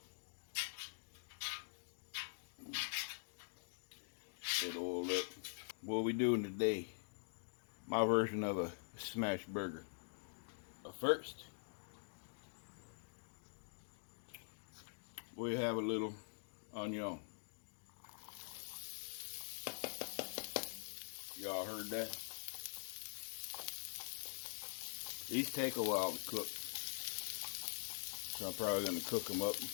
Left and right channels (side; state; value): right; silent; digital silence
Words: Get oiled up. What are we doing today? My version of a smash burger. But first, we have a little onion. Y'all heard that? These take a while to cook, so I'm probably going to cook them up